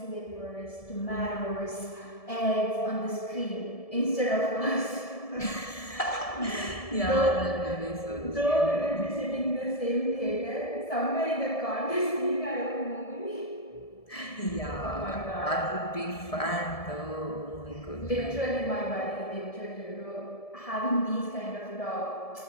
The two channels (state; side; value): late; right; 1.7 ms